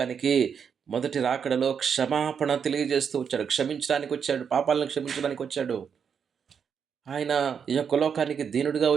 మొదటి రాకడలో క్షమాపణ తెలియజేస్తూ వచ్చాడు, క్షమించడానికి వచ్చాడు, పాపాలను క్షమించడానికి వచ్చాడు. ఆయన ఈ యొక్క లోకానికి దీనుడిగా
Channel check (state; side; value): quieter; left; 7.0 dB